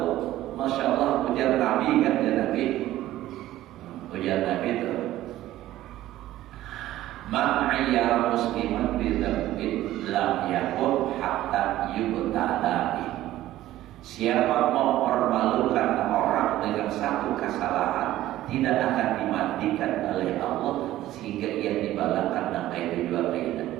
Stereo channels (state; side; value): quieter; left; 14.6 dB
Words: Masya Allah ujar Nabi kan ya Nabi ujar Nabi itu man ayyara musliman bidzambin lam yakun hatta yubtala bi. Siapa mempermalukan orang dengan satu kesalahan tidak akan dimandikan oleh Allah sehingga ia dibalakan dengan kayu jual